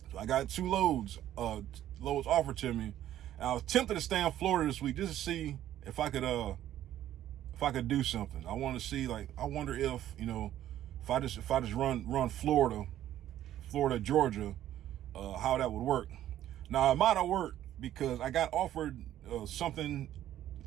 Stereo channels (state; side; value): quieter; left; 12.3 dB